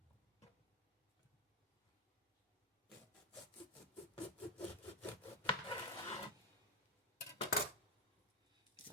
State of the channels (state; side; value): normal; both; correlation 0.05